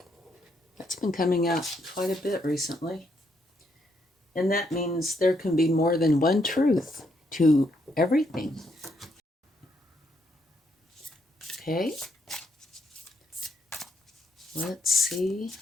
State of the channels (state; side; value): normal; both; correlation 0.75